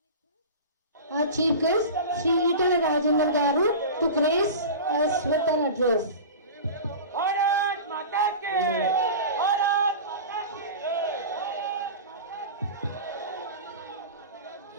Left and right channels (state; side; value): inverted; both; correlation -0.31